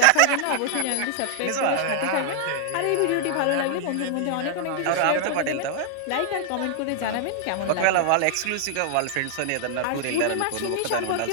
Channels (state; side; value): different; both; correlation -0.01